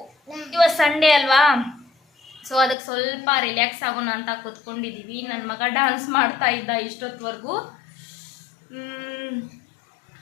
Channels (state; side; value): drops out; right; at 2.8 s